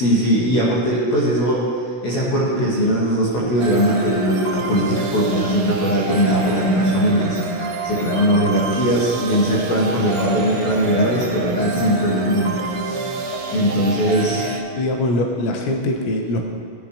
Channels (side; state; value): right; late; 16 ms